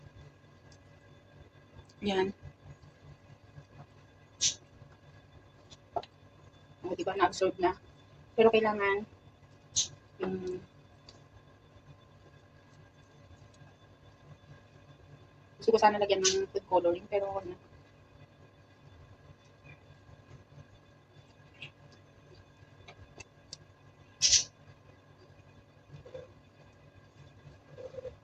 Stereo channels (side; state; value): both; identical; correlation 1.00